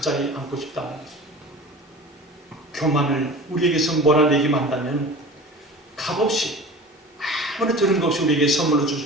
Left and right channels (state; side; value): normal; both; correlation 0.38